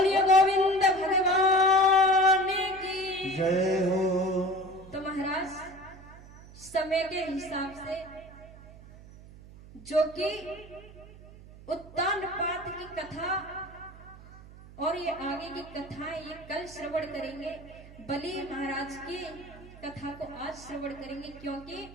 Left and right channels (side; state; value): right; noise; hum, 19 dB below the sound